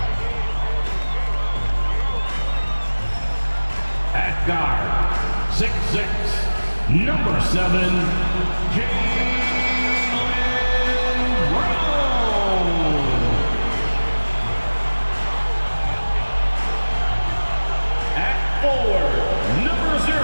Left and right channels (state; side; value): inverted; both; correlation -1.00